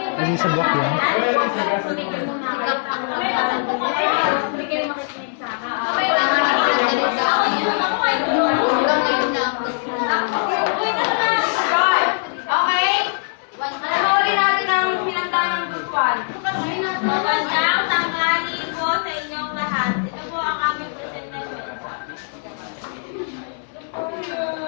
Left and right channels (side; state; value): right; silent; 59 dB below the other